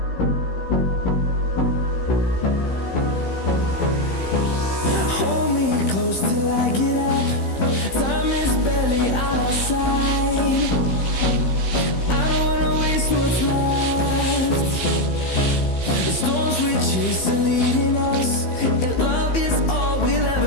Hold me close till I get up. Time is barely on our side. I don't wanna waste what's left. The storms we chase are leading us, and love is all we'll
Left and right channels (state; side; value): late; right; 15 ms